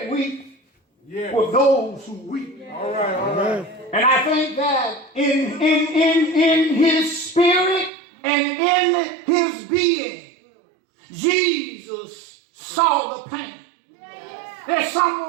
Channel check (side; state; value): left; drops out; at 7.9 s